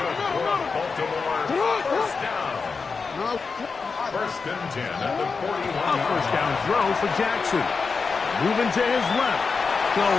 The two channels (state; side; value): quieter; right; 4.9 dB